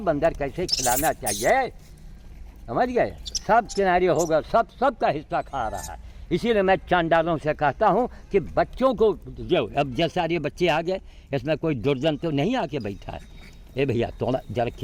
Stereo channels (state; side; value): identical; both; correlation 1.00